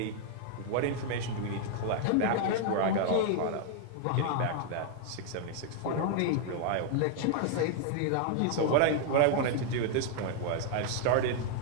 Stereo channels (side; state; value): both; different; correlation 0.00